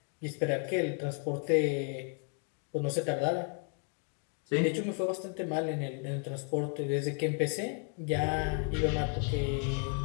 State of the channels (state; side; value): quieter; right; 39.8 dB